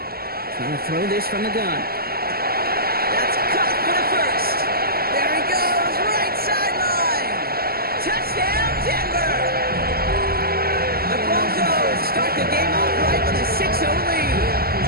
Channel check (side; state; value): left; late; 0.44 ms